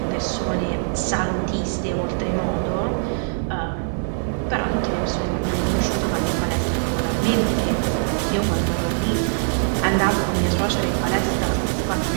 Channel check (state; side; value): silent; left; digital silence